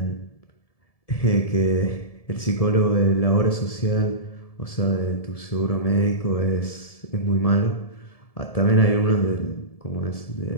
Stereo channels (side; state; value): right; late; 1.7 ms